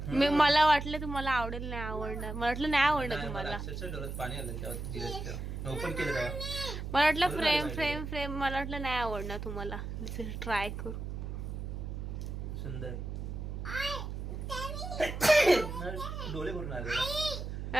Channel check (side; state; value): right; noise; hum, 5 dB below the sound